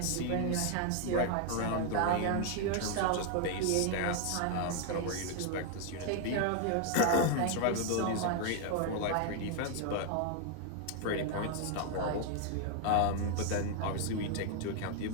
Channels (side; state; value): both; different; correlation 0.00